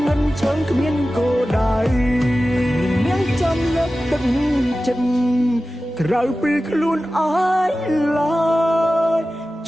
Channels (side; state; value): both; normal; correlation 0.95